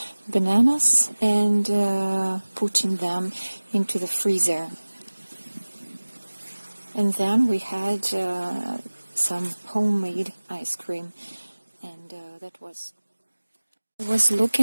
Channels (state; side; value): inverted; both; correlation -1.00